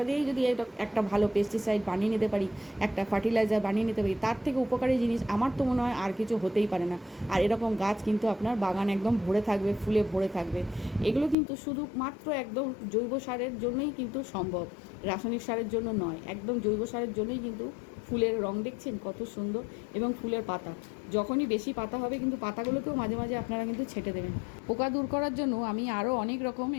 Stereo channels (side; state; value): right; drops out; at 11.4 s